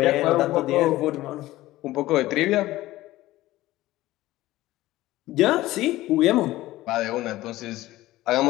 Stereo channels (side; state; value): right; quieter; 16.7 dB